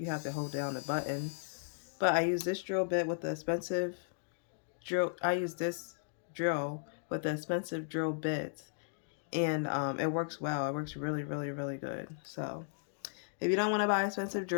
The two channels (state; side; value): silent; right; digital silence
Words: have to hold down the button. But I use this drill bit with the expensive drill. I use this drill with the expensive drill bits, and it works well. It works really, really, really good. So if you don't want to buy an expensive